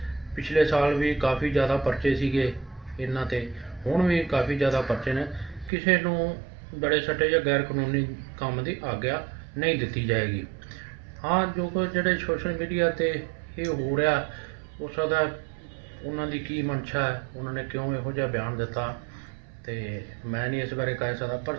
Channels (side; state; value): left; drops out; at 5.7 s